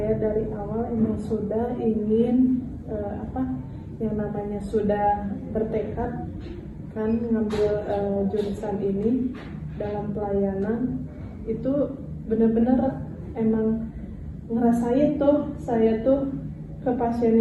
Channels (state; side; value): identical; both; correlation 1.00